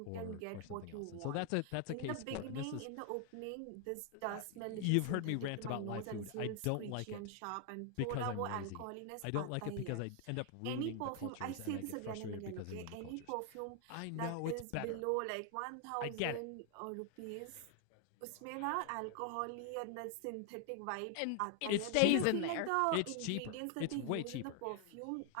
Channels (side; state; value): both; different; correlation 0.00